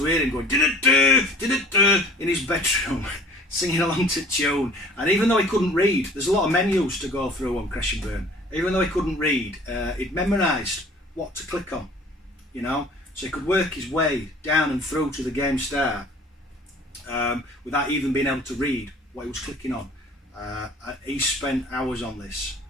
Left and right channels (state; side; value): normal; both; correlation 0.48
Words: hear him going did-it-do in his bedroom, singing along to tune. And even though he couldn't read, there's a lot of menus to go through on Crash and Burn. Even though he couldn't read, he'd memorised what to click on, you know, so he could work his way down and through to the game start without even being able to read what he was clicking on. He spent hours on this,